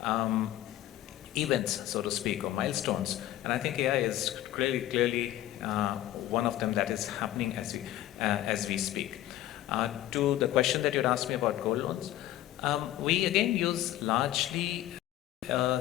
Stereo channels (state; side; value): quieter; right; 14.0 dB